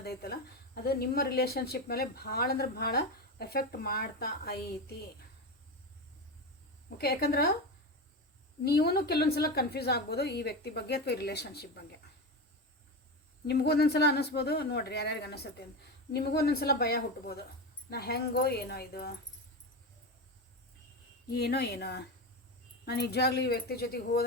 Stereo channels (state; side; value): normal; both; correlation 0.18